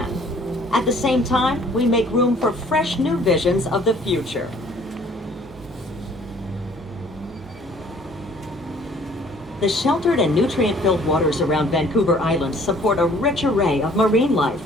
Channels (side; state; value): both; normal; correlation 0.56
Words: At the same time, we make room for fresh new visions of the future. The sheltered and nutrient-filled waters around Vancouver Island support a rich array of marine life,